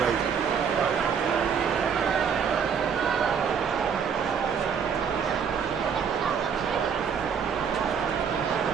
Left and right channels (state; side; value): quieter; left; 6.9 dB